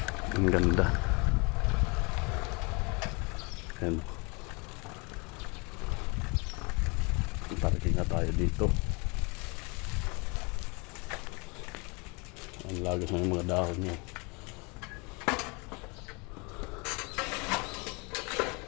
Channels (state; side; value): quieter; right; 30.0 dB